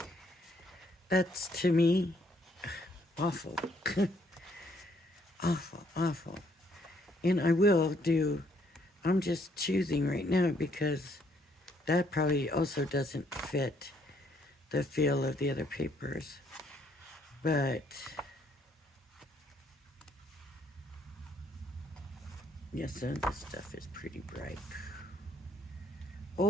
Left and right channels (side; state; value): both; normal; correlation 0.69